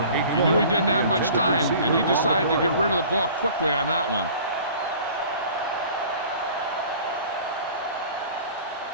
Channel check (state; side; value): inverted; both; correlation -0.45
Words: He knew he didn't have much time, and he decided to get rid of the ball quickly on that one.